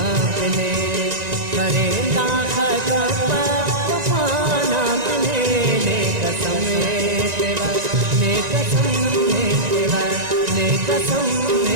पिने करेंदा खगपा वफाना पिने ने कसम तेरा ने कसम तेरा ने कसम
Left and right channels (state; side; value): late; left; 1.9 ms